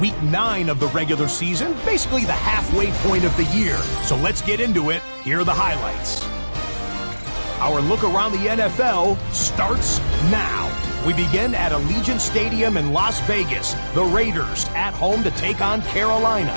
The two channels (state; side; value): inverted; both; correlation -1.00